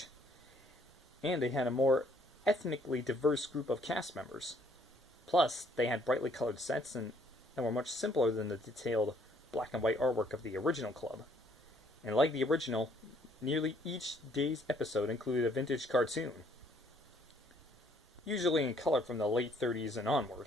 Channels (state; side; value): normal; both; correlation 0.64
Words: and they had a more ethnically diverse group of cast members. Plus, they had brightly colored sets and were much simpler than the detailed black and white artwork of the original club. And like the original, nearly each day's episode included a vintage cartoon, usually in color from the late 30s and